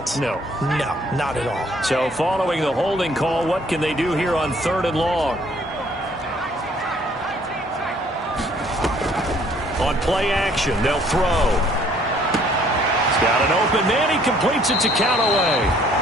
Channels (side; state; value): both; normal; correlation 0.61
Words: No. No, not at all. So following the holding call, what can they do here on 3rd and long? On play action, they'll throw. He's got an open man. He completes it to Callaway.